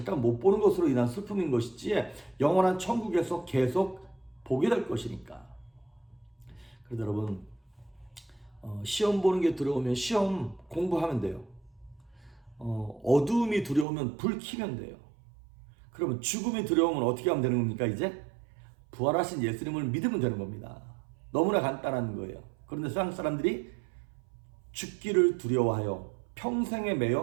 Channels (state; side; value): drops out; left; at 13.9 s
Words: 못 보는 것으로 인한 슬픔인 것이지 영원한 천국에서 계속 보게 될 것이니까. 그래서 여러분, 시험 보는 게 두려우면 시험 공부하면 돼요. 어두움이 두려우면 불 켜면 돼요. 그러면 죽음이 두려우면 어떻게 하면 되는 겁니까? 이제 부활하신 예수님을 믿으면 되는 겁니다. 너무나 간단한 거예요. 그런데 세상 사람들이 죽기를 두려워하여 평생에